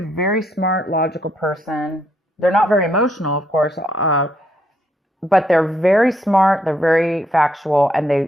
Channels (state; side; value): normal; both; correlation 0.73